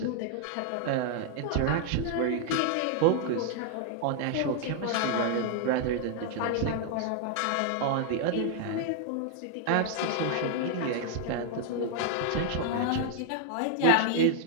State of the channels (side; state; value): both; different; correlation 0.00